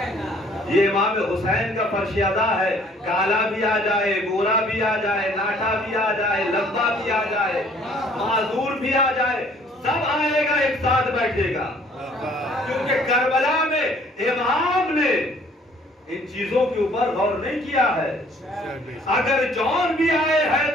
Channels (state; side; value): normal; both; correlation 0.58